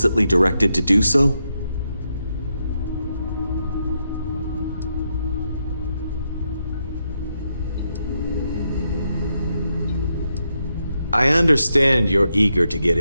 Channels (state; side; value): inverted; both; correlation -0.82